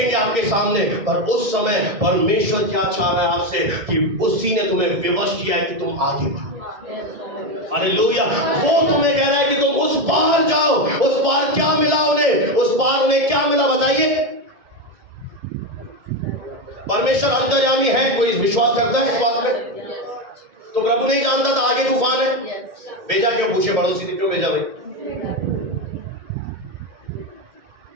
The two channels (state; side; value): late; left; 1.7 ms